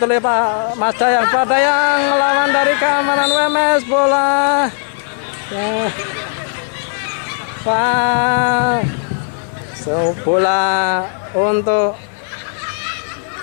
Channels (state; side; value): silent; right; 62 dB below the other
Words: oleh Pak Mas Dayang. Pak Dayang melawan dari keamanan UMS. Bola bola untuk